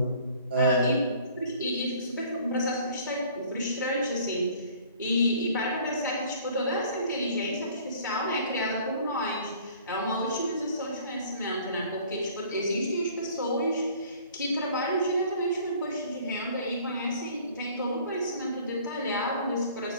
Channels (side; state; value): both; inverted; correlation -0.52